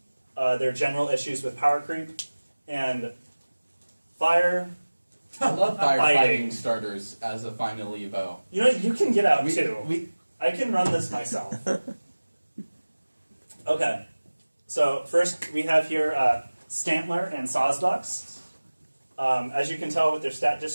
There are general issues with power creep and fire. I love Fighting. firefighting starters as a final Evo. You know, you can get out too. We, I can run this myself. Okay. So first we have here Stantler and Sawsbucks. As you can tell with their stat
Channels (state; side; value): inverted; both; correlation -1.00